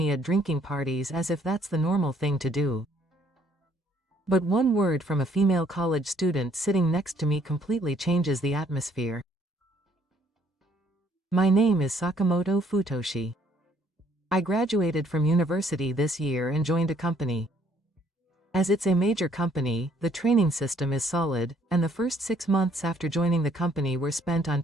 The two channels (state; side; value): normal; both; correlation 0.64